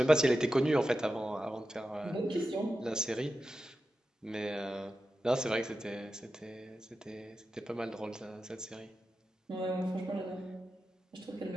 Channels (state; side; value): normal; both; correlation 0.91